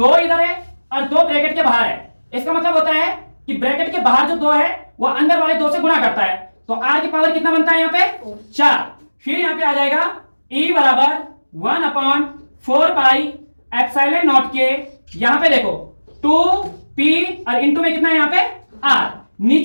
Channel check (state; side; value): inverted; both; correlation -1.00